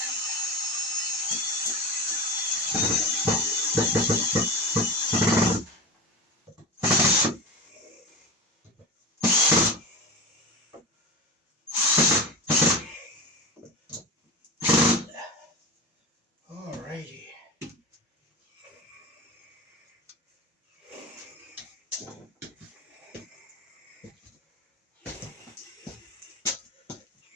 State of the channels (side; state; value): both; normal; correlation 0.27